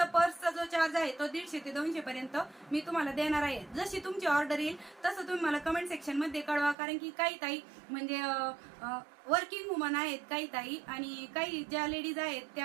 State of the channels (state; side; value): drops out; left; at 6.8 s